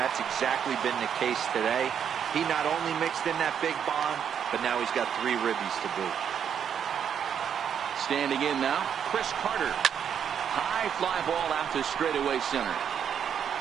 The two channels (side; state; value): left; quieter; 8.2 dB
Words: exactly been the case today. He not only mixed in that big bomb, but now he's got 3 ribbies to boot. Standing in now, Chris Carter. High fly ball out to straightaway center.